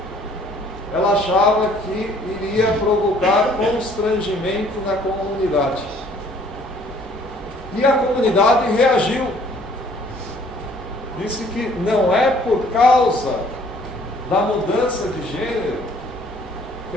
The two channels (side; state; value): both; normal; correlation 0.58